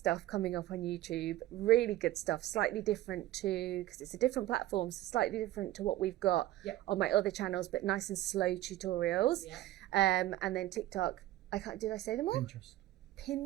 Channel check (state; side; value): quieter; left; 15.1 dB